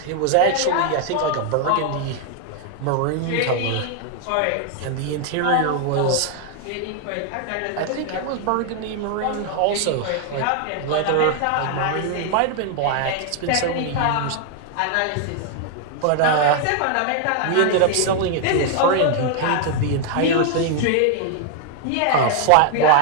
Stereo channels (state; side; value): different; both; correlation 0.00